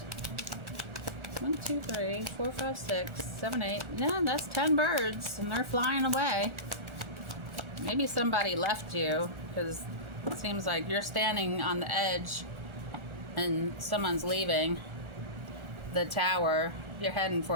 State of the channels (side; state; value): left; late; 1.4 ms